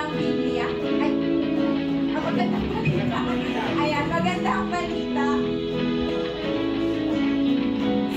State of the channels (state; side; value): identical; both; correlation 1.00